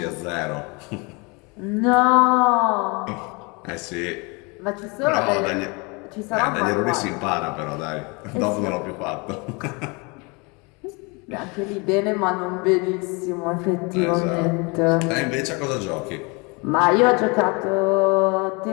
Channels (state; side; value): quieter; right; 29.2 dB